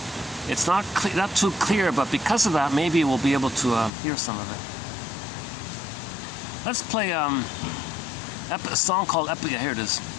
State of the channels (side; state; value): right; drops out; at 3.9 s